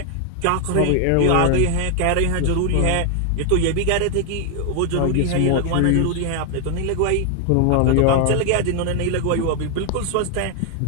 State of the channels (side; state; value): both; different; correlation 0.01